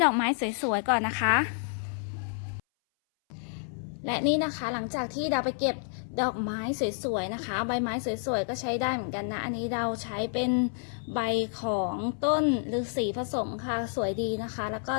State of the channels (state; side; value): silent; right; 58 dB below the other